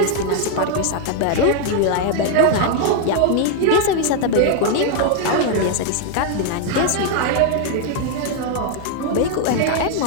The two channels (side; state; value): both; different; correlation 0.00